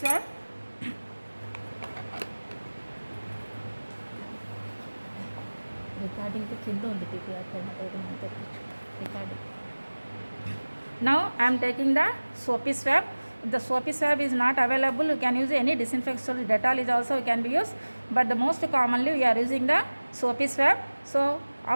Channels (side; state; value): both; inverted; correlation -1.00